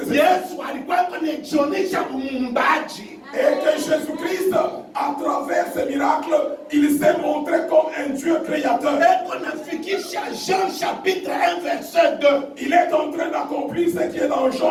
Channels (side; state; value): both; identical; correlation 1.00